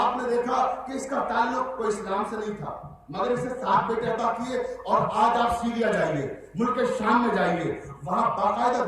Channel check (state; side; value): identical; both; correlation 1.00